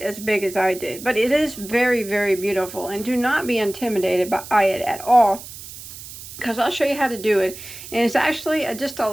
big as I did, but it is very, very beautiful, and do not be intimidated by it at all, because I'll show you how to do it. And it's actually just a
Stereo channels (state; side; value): noise; right; hiss, 14 dB below the sound